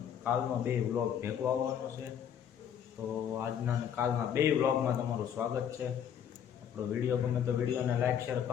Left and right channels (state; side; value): quieter; right; 8.8 dB